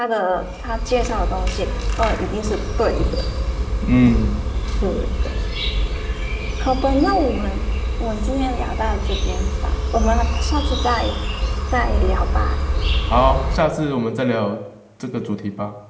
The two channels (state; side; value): identical; both; correlation 1.00